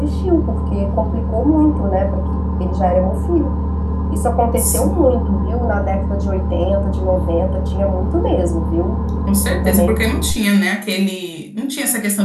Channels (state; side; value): identical; both; correlation 1.00